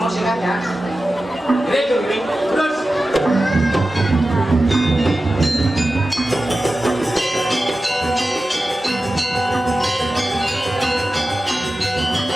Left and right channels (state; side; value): normal; both; correlation 0.94